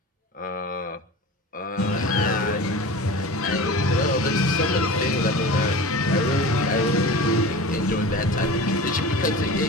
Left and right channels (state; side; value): normal; both; correlation 0.35